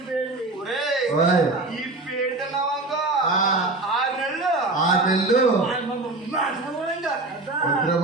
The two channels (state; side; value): quieter; left; 3.1 dB